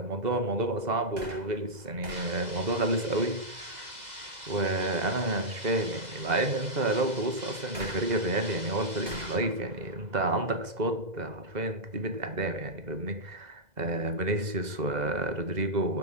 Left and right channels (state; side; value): late; left; 2.0 ms